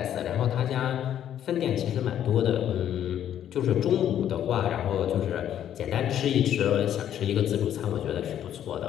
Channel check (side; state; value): right; quieter; 10.5 dB